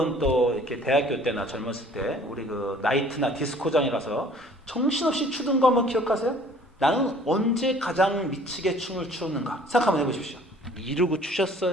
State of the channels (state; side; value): normal; both; correlation 0.53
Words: 또 이렇게 대학교 때나 젊었을 때 우리 그 나이트나 디스코장에 가서 정신없이 추던 거 한번 기억하세요? 나는 언제 가장 미치게 춤을 추었는가 생각 한번 해보십시오. 이러고